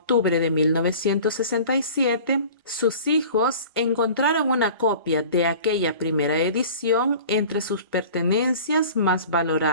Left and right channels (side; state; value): both; inverted; correlation -0.42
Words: de 1967, sus hijos encontraron una copia de aquella primera edición entre sus pertenencias más